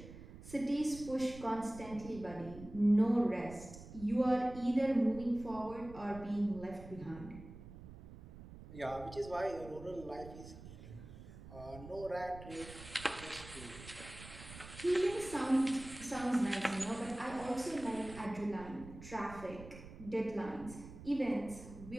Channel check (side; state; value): right; noise; rumble, 15 dB below the sound